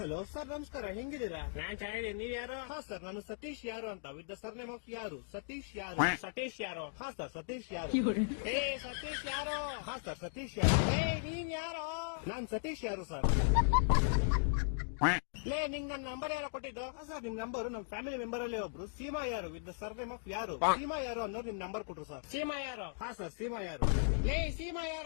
sir, ನಮಸ್ಕಾರ. ಹೆಂಗಿದ್ದೀರಾ? ನಾನ್ ಚೆನ್ನಾಗಿದ್ದೀನಿ. ನೀವ್ ಯಾರು? ಹಾ ಸರ್, ನಾನು ಸತೀಶ್ ಯಾರು ಅಂತ, with the sir name of ಯಾರು. ಸತೀಶ್ ಯಾರು. ಸತೀಶ್ ಯಾರು? ಹಾ ಸರ್, ಸತೀಶ್ ಯಾರು. ಏ ಸತೀಶ್ ಯಾರು? ಹಾ ಸರ್, ಸತೀಶ್ ಯಾರು. ಏ ನೀನ್ ಯಾರು? ನಾನ್ ಸತೀಶ್ ಯಾರು ಸರ್. ಲೇ ನಿಂಗ್ ನನ್ ನಂಬರ್ ಯಾರೋ ಕೊಟ್ಟಿದ್ದು? ಹಾ ಸರ್, ನಿಮ್ ನಂಬರ್ ನಮ್ ಫ್ಯಾಮಿಲಿ ಮೆಂಬರ್ ಅಲ್ಲಿ ಒಬ್ರು ಸೀಮಾ ಯಾರು with the sir name of ಯಾರು, ಸೀಮಾ ಯಾರು ಅನ್ನೋರು ನಿಮ್ ನಂಬರ್ ಕೊಟ್ರು ಸರ್. ಸೀಮಾ ಯಾರು? ಹಾ ಸರ್, ಸೀಮಾ ಯಾರು. ಲೇ ಸೀಮಾ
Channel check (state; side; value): silent; right; digital silence